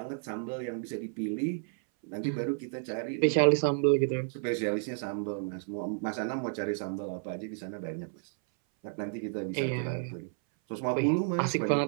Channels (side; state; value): left; silent; 57 dB below the other